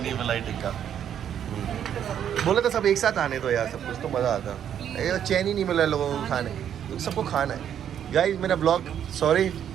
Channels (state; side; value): quieter; left; 9.4 dB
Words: मलाई टिक्का। बोले तो सब एक साथ आने तो यार, सब कुछ तो मज़ा आता। ये चैन ही नहीं मिला लोगों को खाने, तो सबको खाना है। गाइस मेरा ब्लॉग, सॉरी